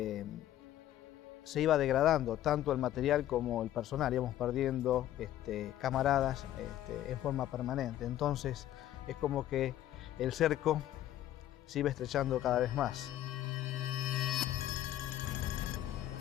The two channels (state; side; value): quieter; right; 12.8 dB